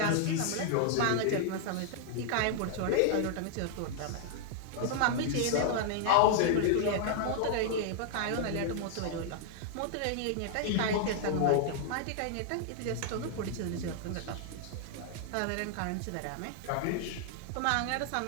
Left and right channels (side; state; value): both; different; correlation -0.01